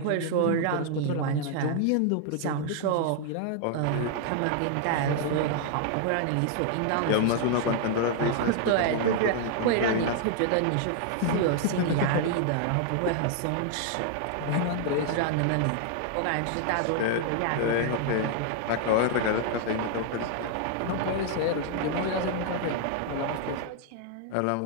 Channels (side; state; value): both; different; correlation 0.00